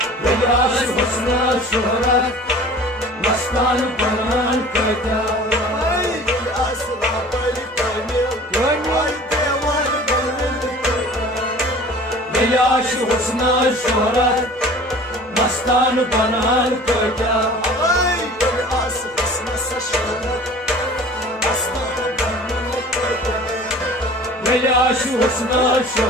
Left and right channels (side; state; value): both; normal; correlation 0.44